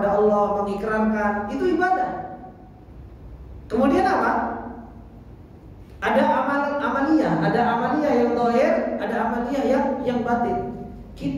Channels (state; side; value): identical; both; correlation 1.00